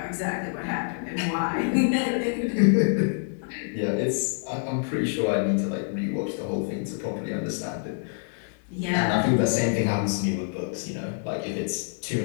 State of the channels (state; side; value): silent; right; digital silence